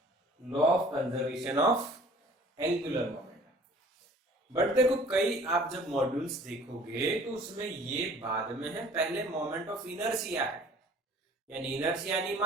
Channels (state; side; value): normal; both; correlation 0.51